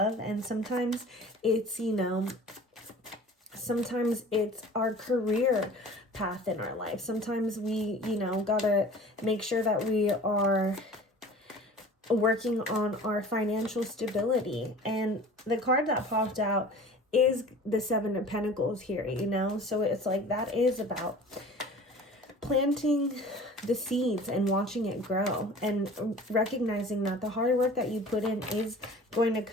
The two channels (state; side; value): normal; both; correlation 0.43